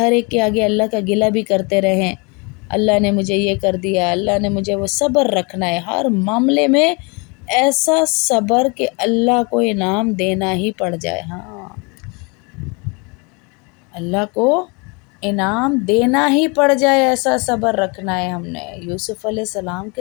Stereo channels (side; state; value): right; quieter; 30.7 dB